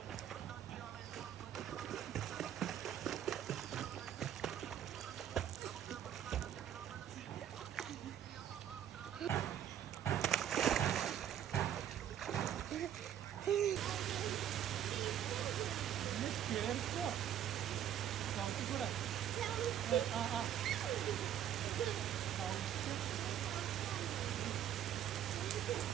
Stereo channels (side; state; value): left; quieter; 10.2 dB